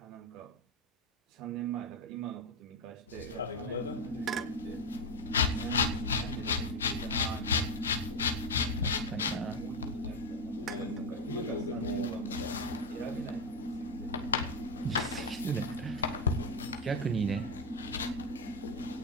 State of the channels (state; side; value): normal; both; correlation 0.07